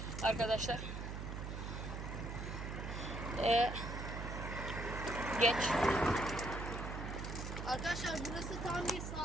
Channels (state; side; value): noise; right; hum, 5 dB below the sound